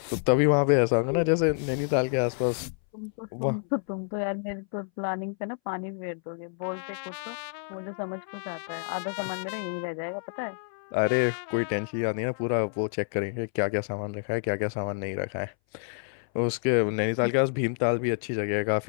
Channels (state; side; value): silent; right; 59 dB below the other